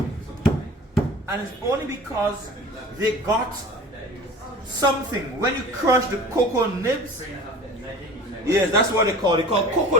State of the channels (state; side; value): normal; both; correlation 0.40